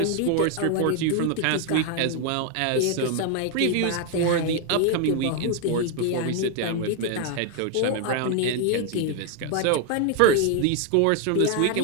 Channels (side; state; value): both; different; correlation 0.01